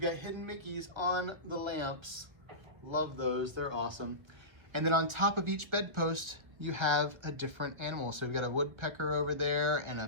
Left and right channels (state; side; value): late; left; 1.7 ms